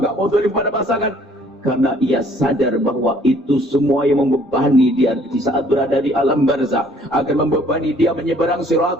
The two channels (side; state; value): both; normal; correlation 0.59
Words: nggak mau zalim pada pasangan. Karena ia sadar bahwa itu semua yang membebani dia di saat berada di alam barzah, akan membebani dia menyeberang